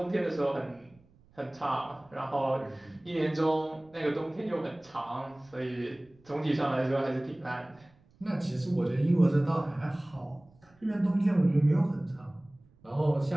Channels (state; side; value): noise; right; rumble, 30 dB below the sound